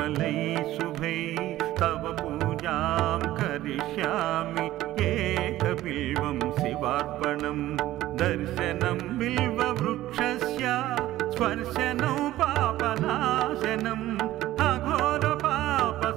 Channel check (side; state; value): left; quieter; 15.1 dB